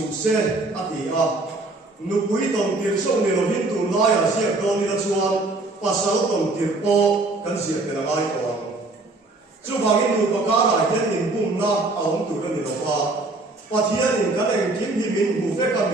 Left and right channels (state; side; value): quieter; left; 3.1 dB